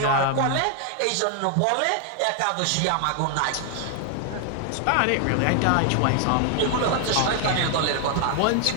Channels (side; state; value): both; different; correlation 0.00